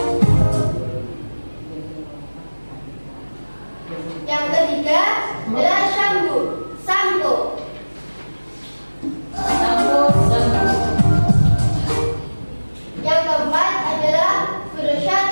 Yang ketiga adalah sampo. Yang keempat adalah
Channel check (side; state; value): both; inverted; correlation -1.00